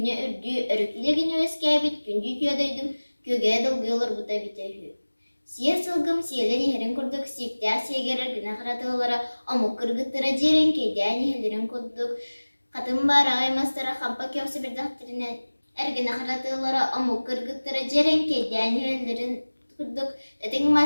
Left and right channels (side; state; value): both; inverted; correlation -1.00